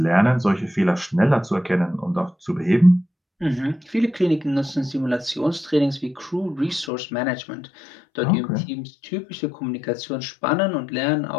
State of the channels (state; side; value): drops out; right; at 6.9 s